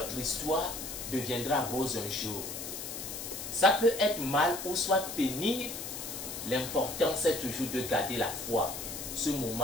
histoire deviendra rose un jour. Ça peut être mal ou soit pénible, l'important c'est toujours de garder la foi. Ce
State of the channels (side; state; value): left; noise; hiss, 7 dB below the sound